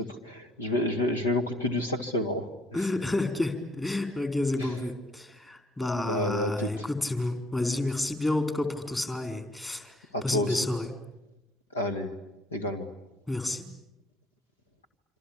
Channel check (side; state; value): both; normal; correlation 0.62